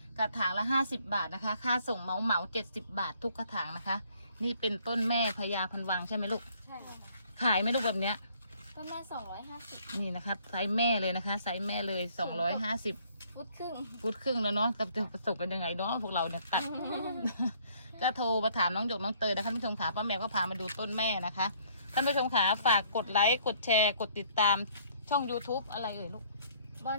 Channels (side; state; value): both; inverted; correlation -0.61